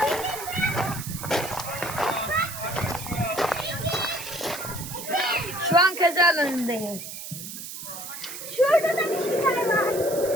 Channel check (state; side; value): noise; right; hiss, 9 dB below the sound